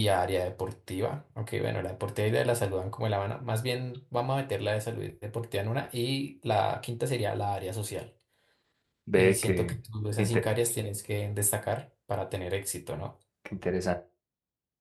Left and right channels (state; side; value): identical; both; correlation 1.00